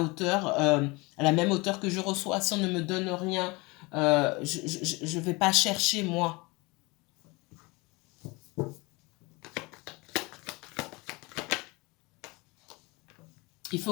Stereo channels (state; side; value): quieter; right; 25.2 dB